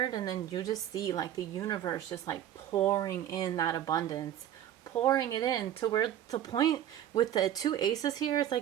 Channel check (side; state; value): left; quieter; 11.1 dB